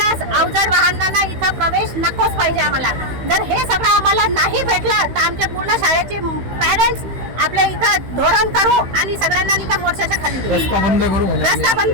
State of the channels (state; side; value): late; left; 15 ms